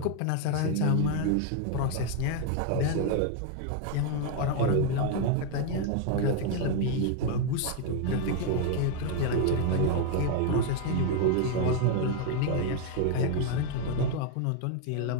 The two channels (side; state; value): both; different; correlation 0.01